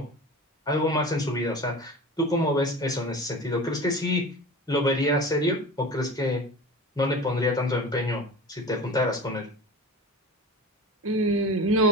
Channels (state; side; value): normal; both; correlation 0.34